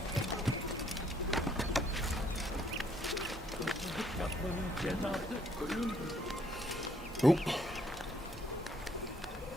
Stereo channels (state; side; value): normal; both; correlation 0.67